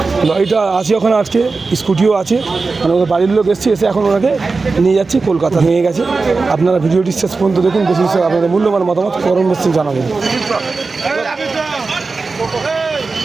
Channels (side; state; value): left; quieter; 4.1 dB